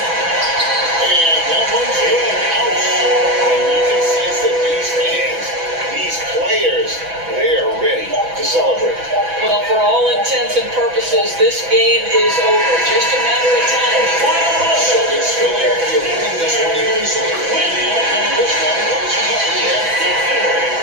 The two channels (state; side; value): late; left; 6.0 ms